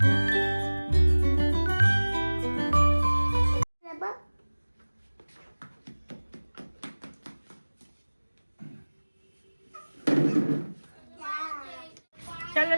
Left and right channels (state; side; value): inverted; both; correlation -1.00